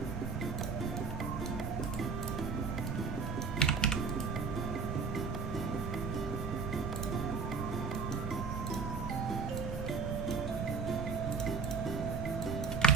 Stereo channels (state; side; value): quieter; left; 5.0 dB